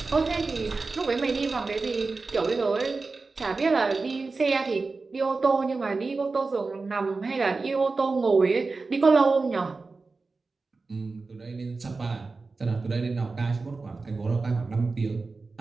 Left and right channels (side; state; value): left; quieter; 3.9 dB